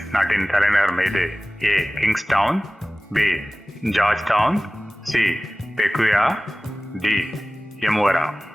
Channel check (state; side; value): normal; both; correlation 0.98